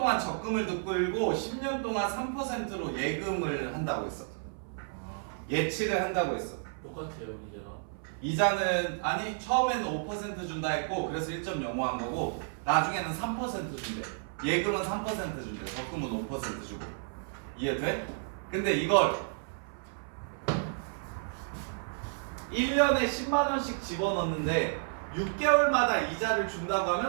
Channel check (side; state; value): left; silent; 57 dB below the other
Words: 적금을 끌고 10년 동안 3%로 예금을 한다고 했어. 예치를 한다고 했어. 똑같아요 이제가. 이자는 아니 처음에는 5% 준다 했고 그래서 1.05 한 거고 나중에는 3% 준대. 예금은 3% 준대. 적금은 5% 주고. 이해돼? 근데 이걸 1년에 10만 원씩 집어넣는데 6개월마다 이자를 준다고